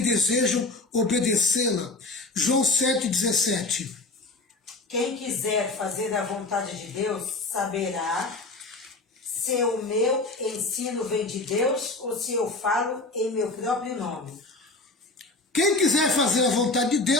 desejam obedecê-la. João 7,17. Quem quiser fazer a vontade de Deus saberá se o meu ensino vem de Deus ou se eu falo em meu próprio nome. Quem quiser fazer a vontade de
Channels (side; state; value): right; quieter; 3.2 dB